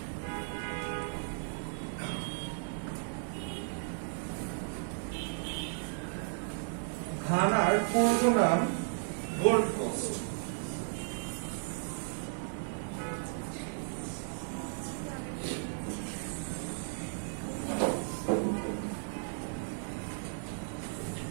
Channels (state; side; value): silent; left; digital silence